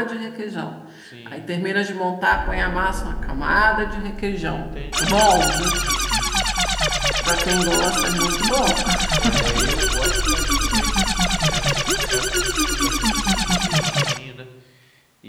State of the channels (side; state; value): both; identical; correlation 1.00